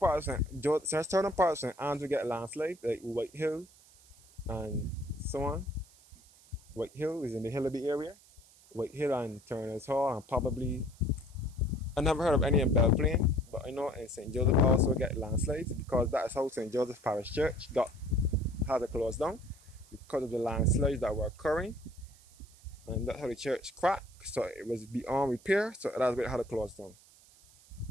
of St. Andrew get landslides, like White Hill and so on. White Hill is in the Hillaby area. White Hill and Turner's Hall, and probably I never heard of any in Belplain, but I know in St. Joseph also get landslides because that is how St. Joseph Parish Church had to close down, because of the landslides that were occurring, and that's how the church cracked, so it was beyond repair, so that's why it had to close down.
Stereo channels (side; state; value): right; noise; hiss, 26 dB below the sound